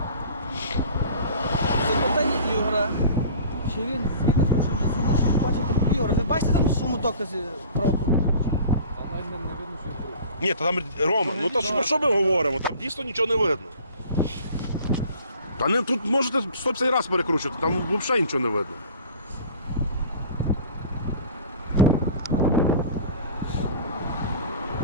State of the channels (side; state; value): both; inverted; correlation -0.44